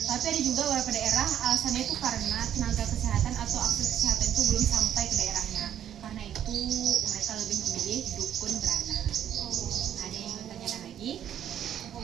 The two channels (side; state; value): left; quieter; 10.1 dB